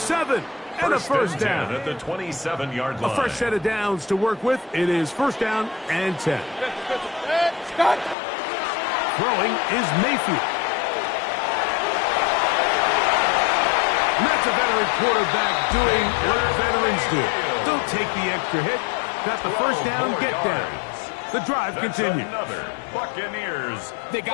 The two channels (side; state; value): right; drops out; at 8.2 s